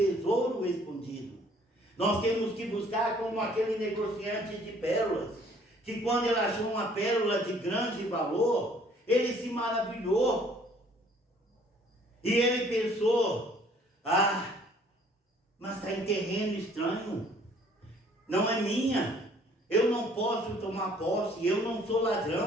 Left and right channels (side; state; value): both; normal; correlation 0.58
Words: escondido. Nós temos que buscar como aquele negociante de pérolas, que quando ele achou uma pérola de grande valor, ele se maravilhou. E ele pensou, mas está em terreno estranho, não é minha, eu não posso tomar posse, eu não sou